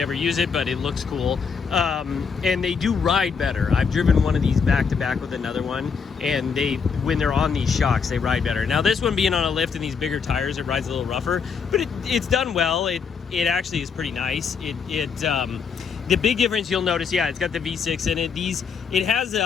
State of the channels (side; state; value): right; quieter; 5.9 dB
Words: ever use it, but it looks cool. And they do ride better. I've driven one of these back to back with another one, and when they're on these shocks, they ride better. Now this one being on a lift and these bigger tires, it rides a little rougher, but it's done well. It actually is pretty nice. The big difference you'll notice, yeah, it's got the V6 in it. It has